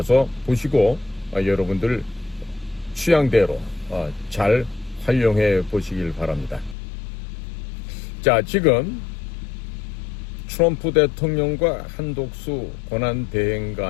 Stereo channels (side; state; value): right; drops out; at 6.8 s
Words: 보시고 여러분들 취향대로 잘 활용해 보시길 바랍니다. 자, 지금 트럼프 대통령과 한독수 권한대행